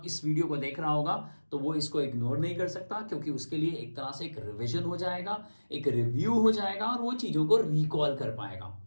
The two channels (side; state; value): both; inverted; correlation -1.00